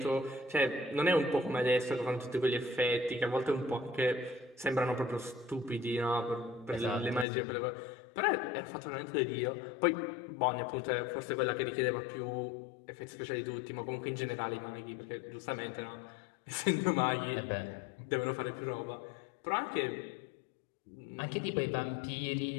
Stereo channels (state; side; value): drops out; right; at 7.2 s